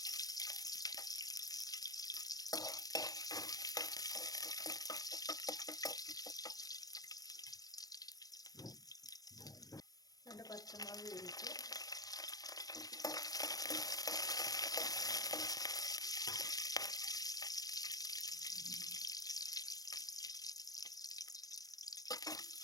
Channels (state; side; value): late; right; 0.18 ms